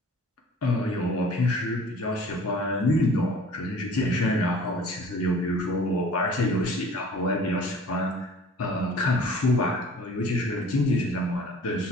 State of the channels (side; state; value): both; normal; correlation 0.48